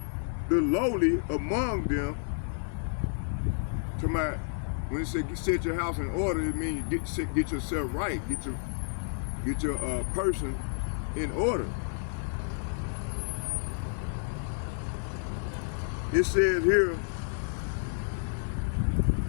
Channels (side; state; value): right; silent; digital silence